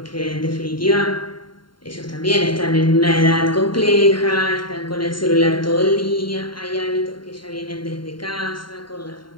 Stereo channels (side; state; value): right; late; 0.72 ms